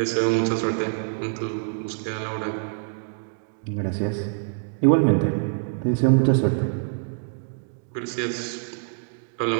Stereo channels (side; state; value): left; silent; digital silence